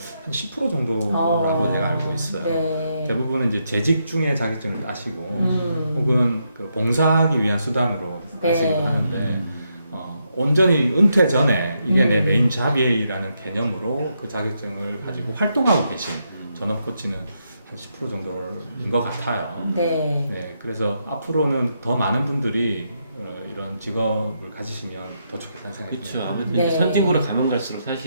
10% 정도라고 제가 알고 있어요. 네. 대부분은 이제 재직 중에 자격증을 따시고, 음. 혹은 그 봉사하기 위한 수단으로 네. 따시고 하는데, 온전히 은퇴 전에 이게 내 메인 잡이라는 개념으로 그 자격증을 가지고 활동하고 계신 전업 코치는 한 10% 정도인 것 같아요. 네. 네, 그래서 앞으로는 더 많은 분들이 이런 직업을 가지시면 더 좋겠다는 생각이 그렇죠. 듭니다. 아무래도 네. 이제 선진국으로 가면 갈수록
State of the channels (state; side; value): inverted; both; correlation -0.80